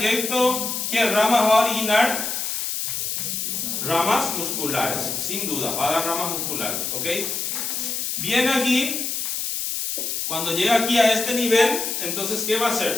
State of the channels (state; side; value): noise; left; hiss, 2 dB below the sound